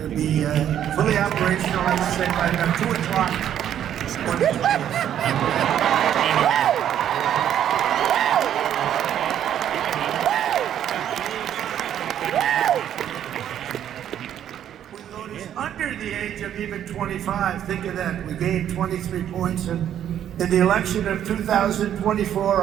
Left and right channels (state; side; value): quieter; left; 10.3 dB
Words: to be fully operational, I would say, by about 2 o'clock. We voted under the age of even 25. Think of that. We gained 23 points. And in the election of 2024,